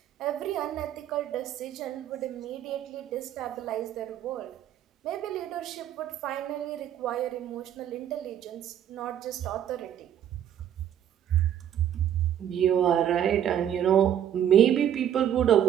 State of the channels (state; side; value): quieter; left; 10.2 dB